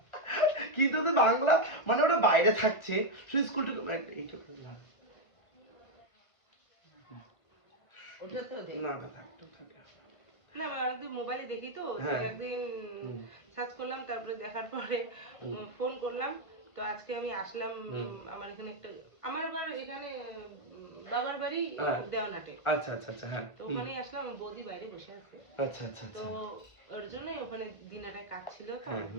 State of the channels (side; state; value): right; late; 1.3 ms